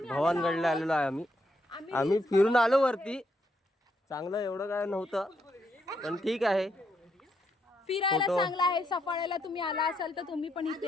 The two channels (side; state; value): both; normal; correlation 0.77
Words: भवानगडला आलेलो आहे आम्ही फिरून आलो वरती. चांगलं एवढं काय नव्हतं पण ठीक आहे. फिरायला फोटो- चांगला आहे. सफाळ्याला तुम्ही आला असाल तर तुम्ही पण